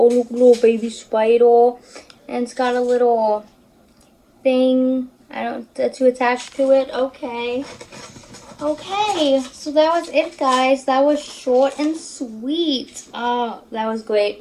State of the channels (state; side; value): identical; both; correlation 1.00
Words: look, little baby spider. And it's got a little thing to attach to it. Okay. Okay, so that was it, guys. That was short and sweet. Oh, that was